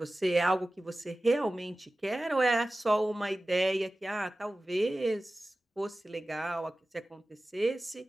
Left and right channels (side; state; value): both; normal; correlation 0.96